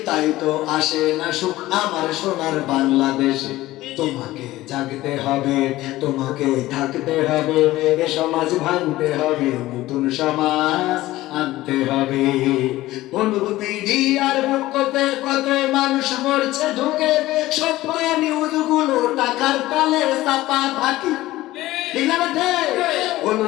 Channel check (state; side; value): quieter; right; 16.8 dB